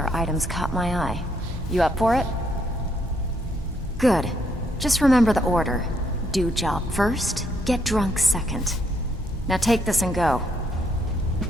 item's caught my eye. You up for it? Good. Just remember the order. Do job first, get drunk second. Now take this and go.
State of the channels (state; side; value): normal; both; correlation 0.73